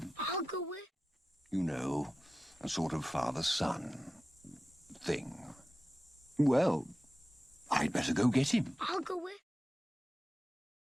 I'll go with. You know, a sort of father-son thing. Well, I'd better go get him. I'll go with.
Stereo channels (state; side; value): normal; both; correlation 0.94